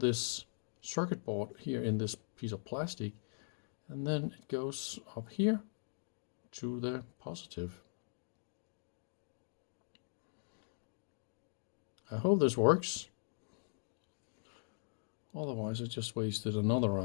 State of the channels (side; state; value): right; silent; digital silence